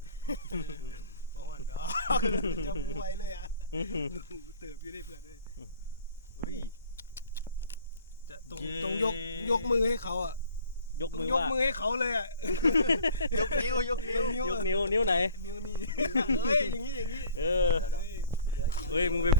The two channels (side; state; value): both; inverted; correlation -0.50